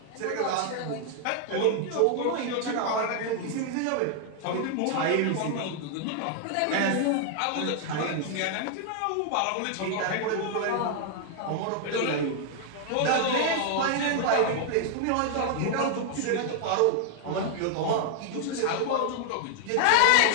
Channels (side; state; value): both; different; correlation 0.00